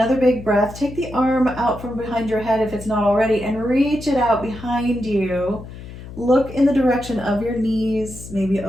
big breath. Take the arm out from behind your head if it's not already, and reach it out behind you. Look in the direction of your knees. Maybe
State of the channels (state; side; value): noise; left; hum, 14 dB below the sound